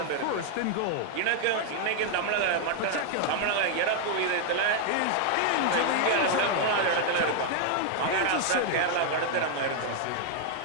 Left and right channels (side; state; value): both; different; correlation 0.00